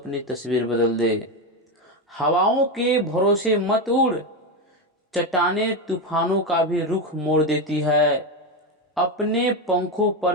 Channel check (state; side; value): normal; both; correlation 0.13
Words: तस्वीर बदल दे। हवाओं के भरोसे मत उड़, चट्टानें तूफानों का भी रुख मोड़ देती है। अपने पंखों